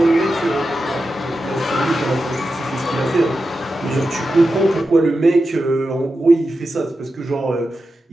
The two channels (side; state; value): both; normal; correlation 0.90